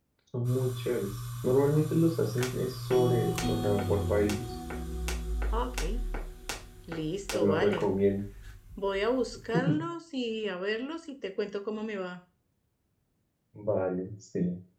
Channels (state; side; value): identical; both; correlation 1.00